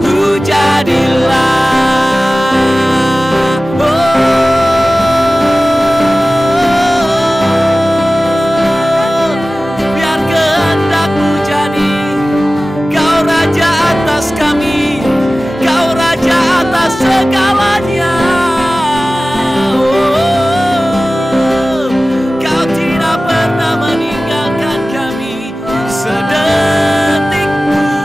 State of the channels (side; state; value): both; normal; correlation 0.97